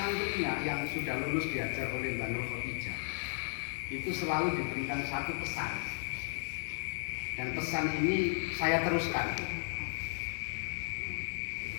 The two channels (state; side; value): silent; right; digital silence